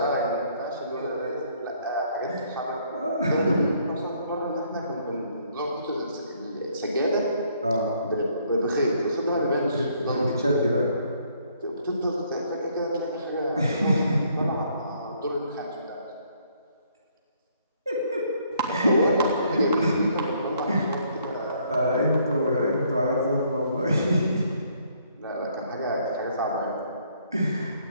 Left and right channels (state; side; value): inverted; both; correlation -0.66